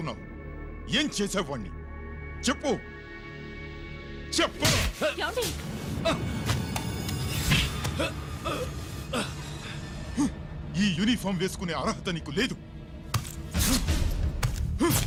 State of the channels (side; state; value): both; identical; correlation 1.00